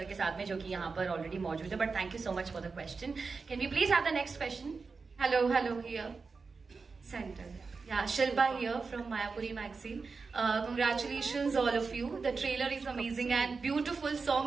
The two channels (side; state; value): left; quieter; 4.6 dB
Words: के साथ में, जो कि यहाँ पर ऑलरेडी मौजूद है। But thank you so much for the question. Can we please have the next question? Hello here centre. Yeah, Shilpa here from Mayapuri magazine. Congratulations all of you. The trailer is amazing and beautiful.